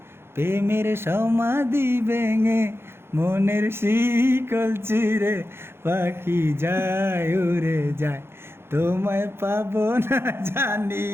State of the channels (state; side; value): late; left; 0.12 ms